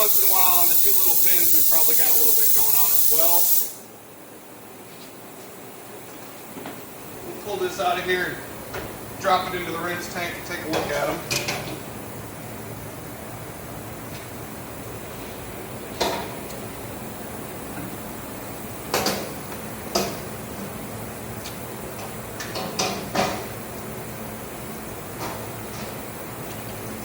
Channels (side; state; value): both; identical; correlation 1.00